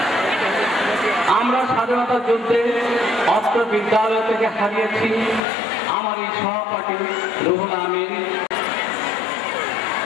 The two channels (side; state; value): right; drops out; at 5.4 s